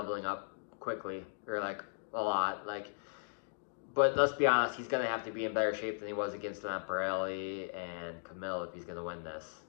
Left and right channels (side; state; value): right; silent; digital silence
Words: up quickly, or like a lot. Like, but let's be honest, he's gonna have to be in better shape than he was against Lamparelli and Camille if he's gonna win this.